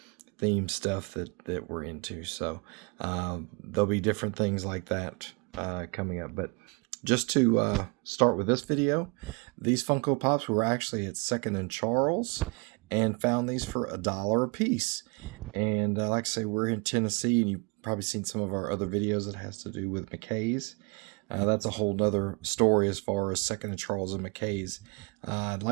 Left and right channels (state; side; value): quieter; left; 31.0 dB